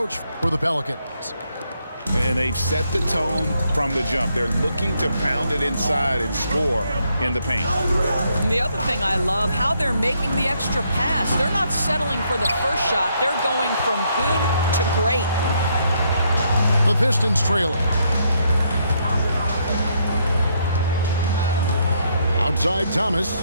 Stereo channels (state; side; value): inverted; both; correlation -0.74